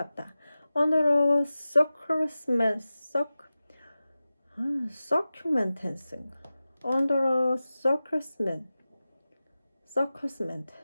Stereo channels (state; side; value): inverted; both; correlation -0.95